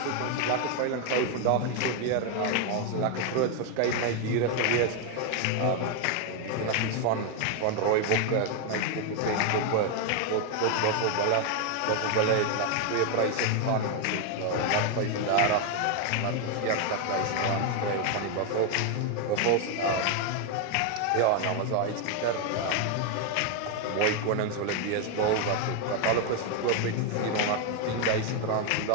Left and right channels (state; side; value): different; both; correlation 0.01